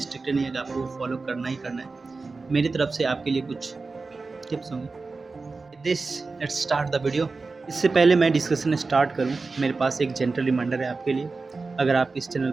नहीं है कि आपको फॉलो करना ही करना है। मेरी तरफ से आपके लिए कुछ टिप्स होंगे। This let's start the video. इससे पहले मैं डिस्कशन स्टार्ट करूं, मेरे पास एक जेंटल रिमाइंडर है आपके लिए। अगर आप इस चैनल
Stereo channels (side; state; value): left; quieter; 4.0 dB